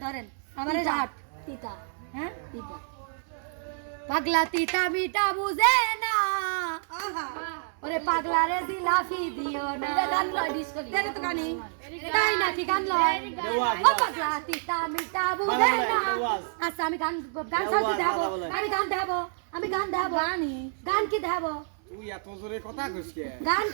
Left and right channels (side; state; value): left; silent; 58 dB below the other